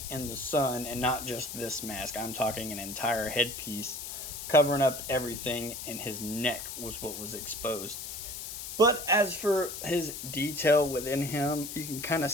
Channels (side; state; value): left; noise; hiss, 8 dB below the sound